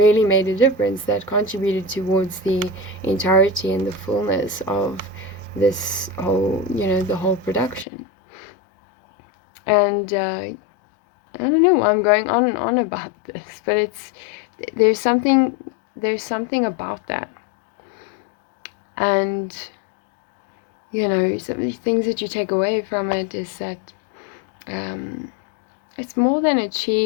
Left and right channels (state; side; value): drops out; right; at 7.9 s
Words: made a difference, that contributed towards the entirety and the fullness of this whole, the whole production. And I don't know why I'm going on and on about this, but there's something about that. And some of the things that you take away from it is that it's more than